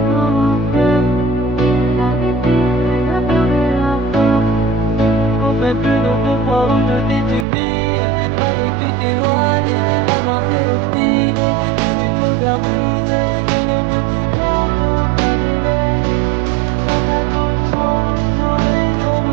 Mais plus d'autres fois où je t'ai subi, j'aurais pu t'éloigner, avancer au fil, je suis tout bien brisé, et les petits cœurs sont annulés. Dans ta douce foi, j'aurais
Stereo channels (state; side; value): drops out; left; at 7.5 s